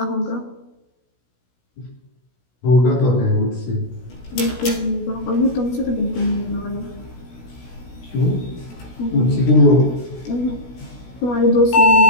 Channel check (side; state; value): right; late; 16 ms